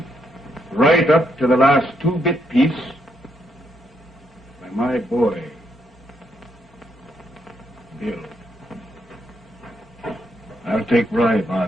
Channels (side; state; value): both; normal; correlation 0.77